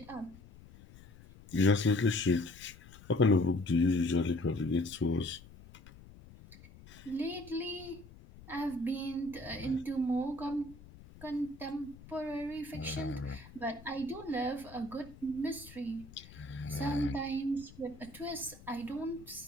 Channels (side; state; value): left; noise; rumble, 19 dB below the sound